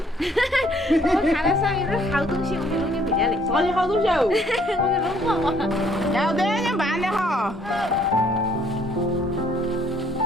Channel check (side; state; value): both; normal; correlation 0.63